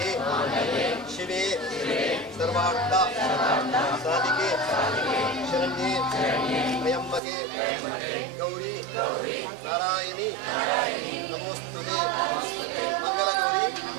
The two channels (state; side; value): drops out; left; at 7.2 s